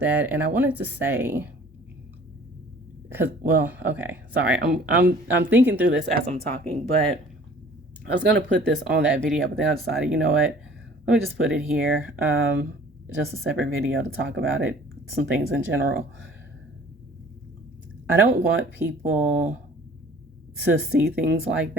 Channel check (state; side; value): normal; both; correlation 0.50